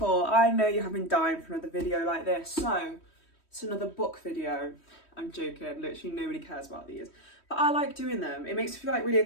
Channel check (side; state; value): right; late; 3.1 ms